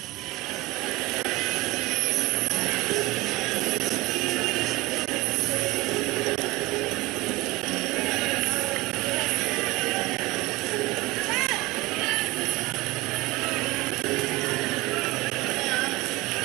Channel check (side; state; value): left; quieter; 21.1 dB